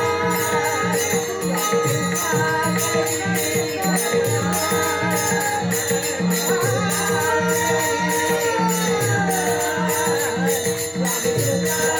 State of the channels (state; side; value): identical; both; correlation 1.00